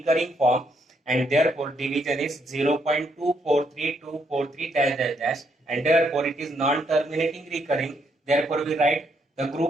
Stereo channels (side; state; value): both; normal; correlation 0.74